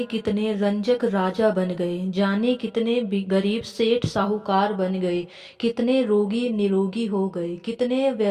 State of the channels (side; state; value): both; identical; correlation 1.00